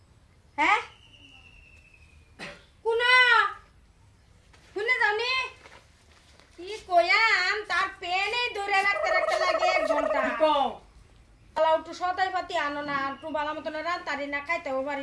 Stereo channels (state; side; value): identical; both; correlation 1.00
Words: হ্যাঁ কোনা কোনে জানি কি কইয়াম তার পেনে ধরে রাখতে লাগে 1 ঘন্টা কও আলাউ তো সদাই পাতি আনো না আর তো বালা মতন রান তারি না খাইতেও